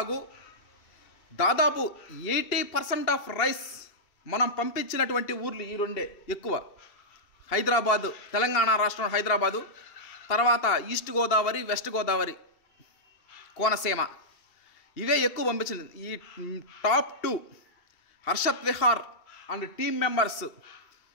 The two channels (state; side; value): late; right; 2.8 ms